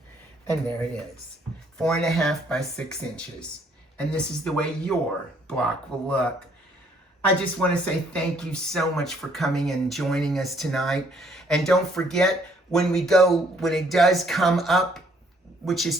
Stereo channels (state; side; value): normal; both; correlation 0.65